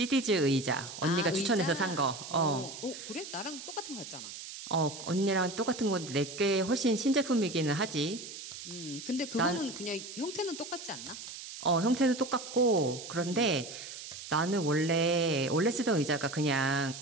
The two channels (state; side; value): noise; right; hiss, 11 dB below the sound